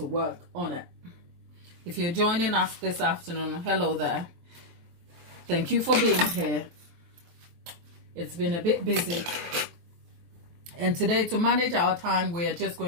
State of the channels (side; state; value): left; late; 23 ms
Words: work on it. If you're joining us this afternoon, hello there. Thank you for being here. It's been a bit busy. And today, to manage our time, we are just